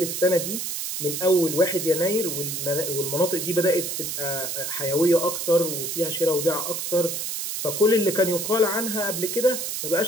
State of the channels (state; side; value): noise; right; hiss, 4 dB below the sound